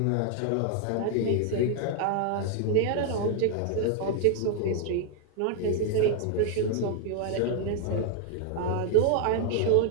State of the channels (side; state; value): both; different; correlation 0.00